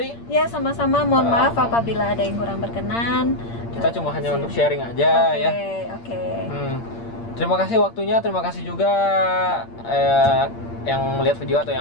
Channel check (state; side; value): late; right; 8.7 ms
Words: Ya, sama-sama. Mohon maaf apabila ada yang kurang berkenan. Kita cuma hanya untuk sharing aja ya. Terima kasih waktunya. Terima kasih juga yang lihat video atau